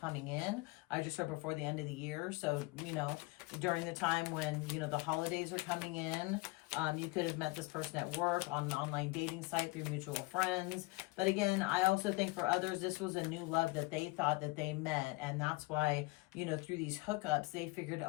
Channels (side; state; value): right; quieter; 23.3 dB